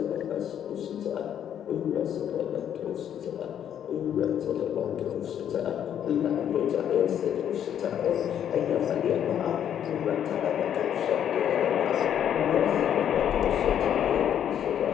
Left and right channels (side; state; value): right; quieter; 9.6 dB